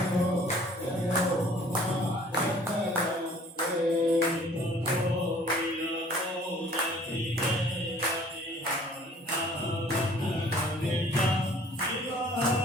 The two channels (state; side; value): normal; both; correlation 0.54